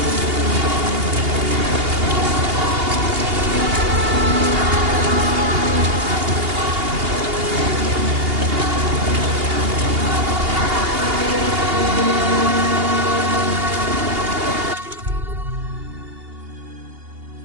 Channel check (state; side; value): late; left; 2.8 ms